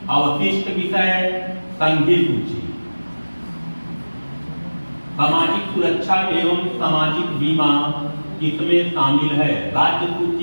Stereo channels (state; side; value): inverted; both; correlation -1.00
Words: अवशिष्ट विषय, संघीय सूची। सामाजिक सुरक्षा एवं सामाजिक बीमा किसमें शामिल है। राज्य